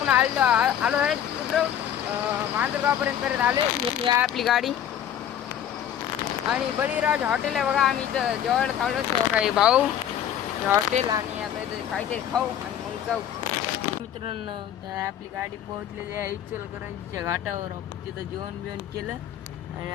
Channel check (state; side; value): quieter; right; 10.1 dB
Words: आलो आहे मांजरगावपर्यंत करत आले। ही आहे आपली गाडी आणि बळीराज हॉटेल आहे बघा। आम्ही इथं जेवायला थांबलो काही भाऊ हॉटेल आणि आता इथं काहीतरी खाऊ आणि मग जाऊ। मित्रांनो आपली गाडी पोहोचलेली आहे इचलकरंजीच्या घाटावर। आपण तिथं जेवण बिवण केलं आणि